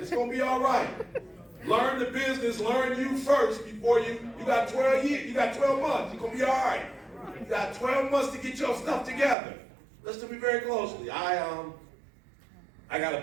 going to be all right. Learn the business. Learn you first before you got 12 years. You got 12 months. You're going to be all right. You got 12 months to get your stuff together. Listen to me very closely. I got a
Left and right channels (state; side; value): drops out; left; at 9.3 s